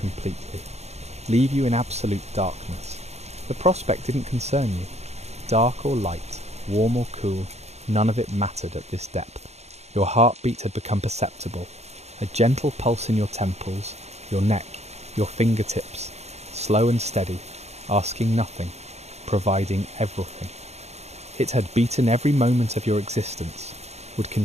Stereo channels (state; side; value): late; left; 0.31 ms